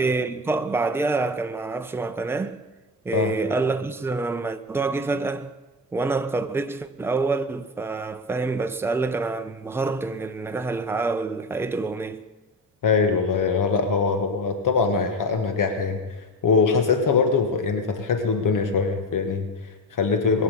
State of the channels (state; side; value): normal; both; correlation 0.21